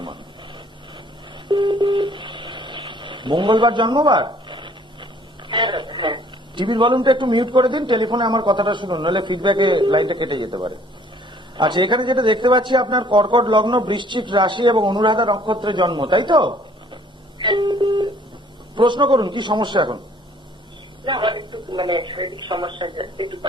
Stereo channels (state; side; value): normal; both; correlation 0.58